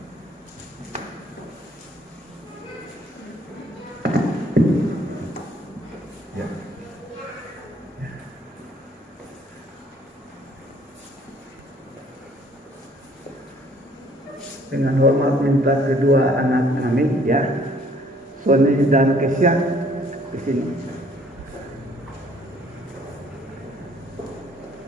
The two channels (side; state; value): both; normal; correlation 0.60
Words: Ya. Dengan hormat minta kedua anak kami ya, Sony dan Kesya di sini.